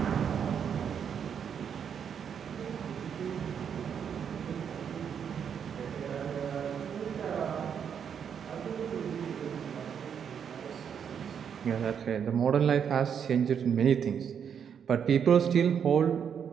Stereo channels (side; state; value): left; quieter; 7.7 dB